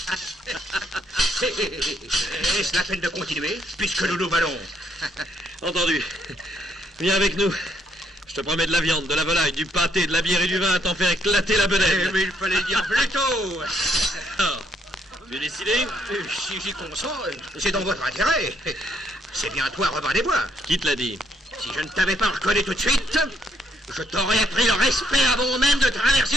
Est-ce la peine de continuer, puisque nous nous valons? Entendu. Viens avec nous. Je te promets de la viande, de la volaille, du pâté, de la bière et du vin à t'en faire éclater la bedaine. Mais il fallait dire plus tôt. Alors, tu es décidé? Si j'y consens, c'est dans votre intérêt. C'est bien toi, Robin des Bois. Qui te l'a dit? Si je ne t'avais pas reconnu tout de suite, je t'aurais appris le respect avant même de traverser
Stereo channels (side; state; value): both; normal; correlation 0.70